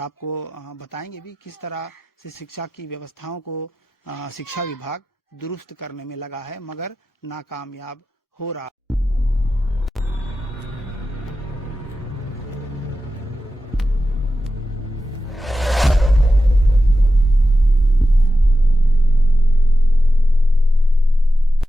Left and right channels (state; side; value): normal; both; correlation 0.92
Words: बताएंगे भी किस तरह से शिक्षा की व्यवस्थाओं को शिक्षा विभाग दुरुस्त करने में लगा है, मगर नाकामयाब हो रहा।